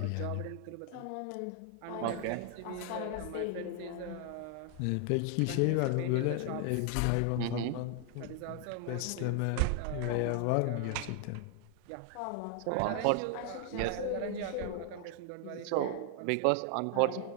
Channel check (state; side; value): different; both; correlation 0.00